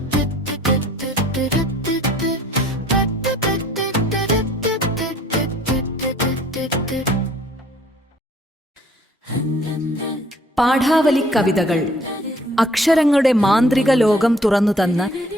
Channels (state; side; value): normal; both; correlation 0.58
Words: പാഠാവലി കവിതകൾ അക്ഷരങ്ങളുടെ മാന്ത്രിക ലോകം തുറന്നുതന്ന്